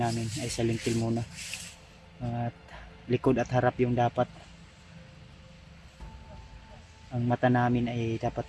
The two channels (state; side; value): identical; both; correlation 1.00